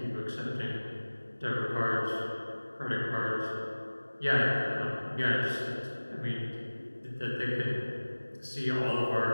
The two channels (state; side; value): inverted; both; correlation -1.00